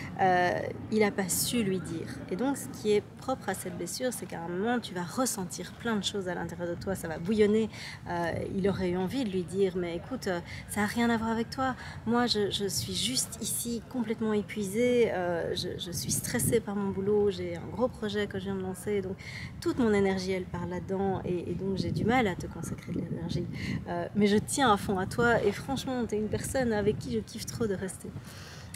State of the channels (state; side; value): identical; both; correlation 1.00